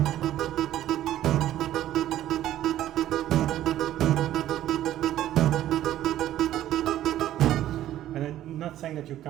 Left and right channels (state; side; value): quieter; left; 12.9 dB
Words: And I'm not saying that you